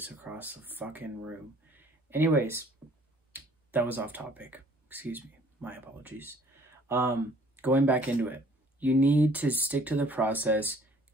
across the fucking room. Anyways, that was off topic. Excuse me, my apologies. Going back into it, you need to stick to the process.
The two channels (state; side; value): normal; both; correlation 0.57